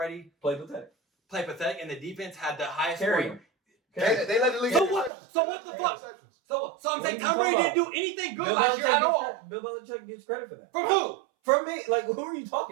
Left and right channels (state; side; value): drops out; left; at 5.1 s